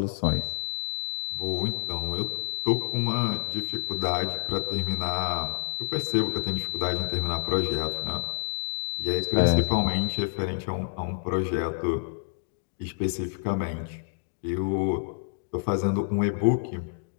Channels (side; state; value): right; silent; digital silence